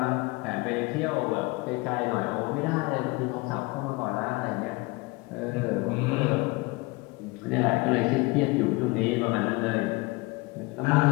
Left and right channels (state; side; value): quieter; right; 24.4 dB